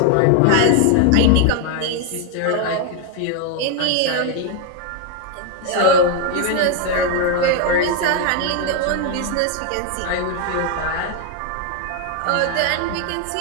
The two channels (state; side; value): different; both; correlation 0.01